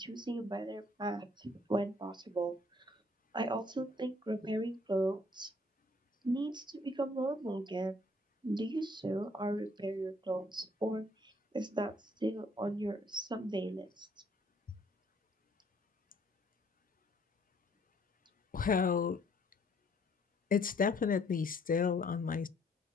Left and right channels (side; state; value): both; normal; correlation 0.63